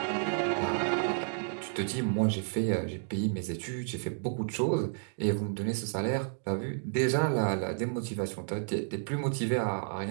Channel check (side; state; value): left; silent; digital silence